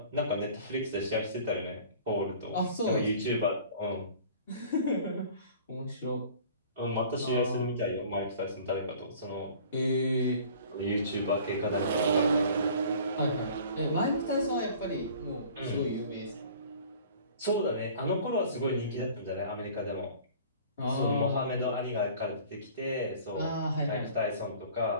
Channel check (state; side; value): inverted; both; correlation -0.48